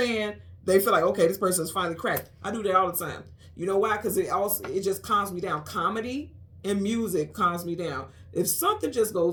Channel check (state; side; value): identical; both; correlation 1.00